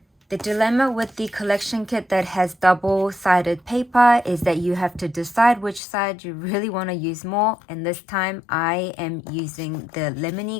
The dilemma with the collection kit that has double-sided paper is that you have to decide which side you really want to use more, and this time I am using the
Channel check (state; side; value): drops out; right; at 5.8 s